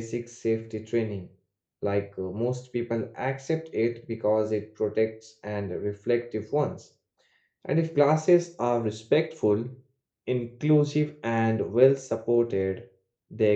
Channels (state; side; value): identical; both; correlation 1.00